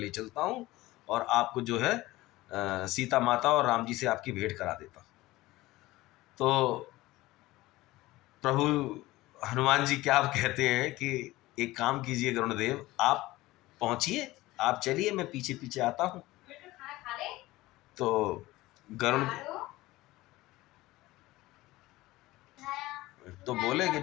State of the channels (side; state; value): right; quieter; 18.4 dB